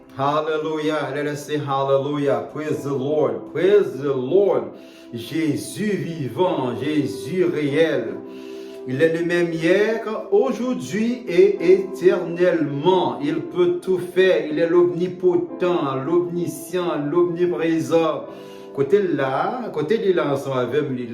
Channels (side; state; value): both; identical; correlation 1.00